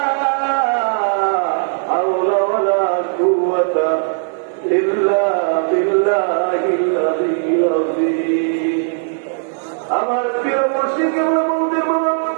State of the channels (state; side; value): silent; left; 67 dB below the other